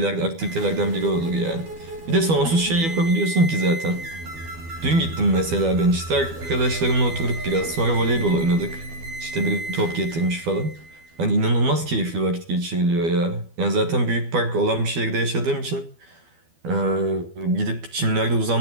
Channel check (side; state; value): left; late; 12 ms